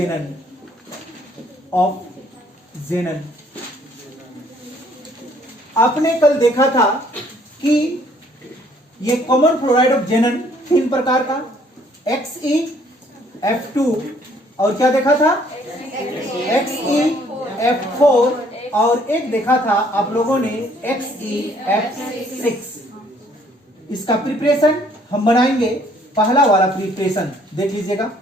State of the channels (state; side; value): normal; both; correlation 0.62